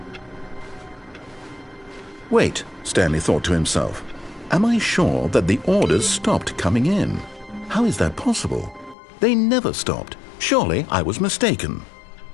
Wait, Stanley thought to himself. Am I sure that the orders stopped coming in? How is that possible? They never stopped. Surely I was mistaken.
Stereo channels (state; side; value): drops out; right; at 9.0 s